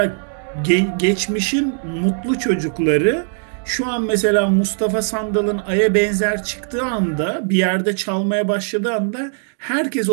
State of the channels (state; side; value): silent; left; 58 dB below the other